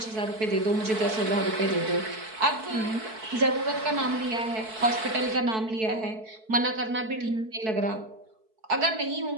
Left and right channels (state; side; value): late; left; 4.6 ms